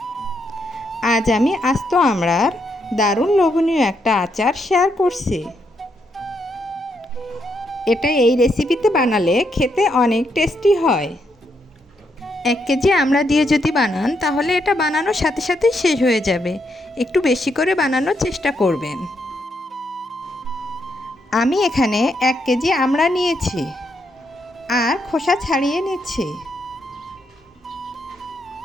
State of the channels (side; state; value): both; normal; correlation 0.78